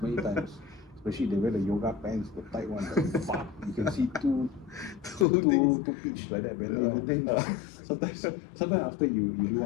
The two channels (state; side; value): drops out; right; at 5.2 s